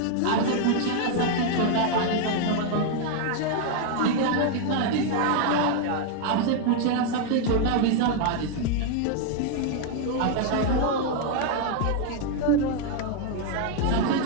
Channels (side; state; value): both; different; correlation 0.00